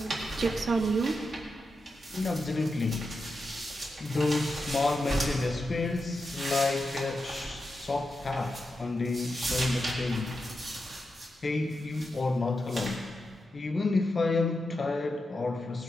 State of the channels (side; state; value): both; normal; correlation 0.88